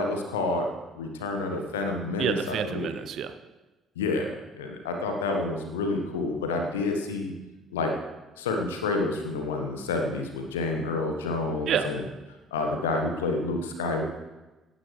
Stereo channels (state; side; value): normal; both; correlation 0.31